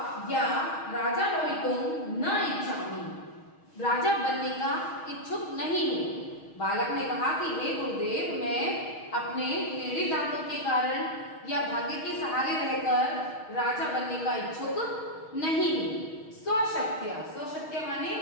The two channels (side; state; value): right; late; 6.4 ms